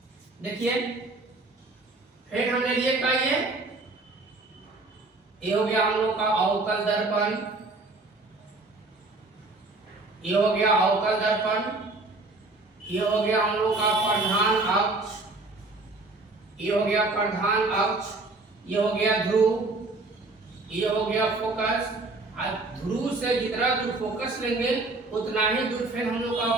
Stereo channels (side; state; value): left; quieter; 3.2 dB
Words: देखिए फिर हमने लिए क्या, ये हो गया हम लोग का अवतल दर्पण, ये हो गया अवतल दर्पण, ये हो गया हम लोग का प्रधान अक्ष, ये हो गया प्रधान अक्ष, ये हो गया ध्रुव, ये हो गया फोकस। ध्रुव से जितना दूर फोकस लेंगे उतना ही दूर फिर हम लोग का